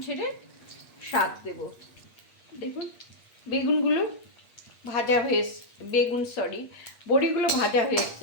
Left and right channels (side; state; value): right; late; 8.5 ms